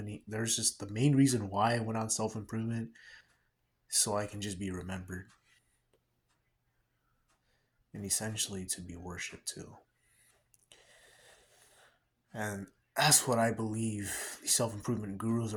There's just the main reason why I went on self improvement, so I can just be remembered and essentially to be worshipped too. And that's what I believe the self improvement gurus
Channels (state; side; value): identical; both; correlation 1.00